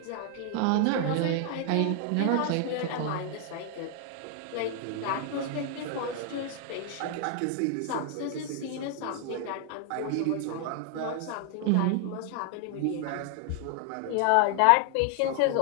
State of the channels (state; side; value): different; both; correlation 0.00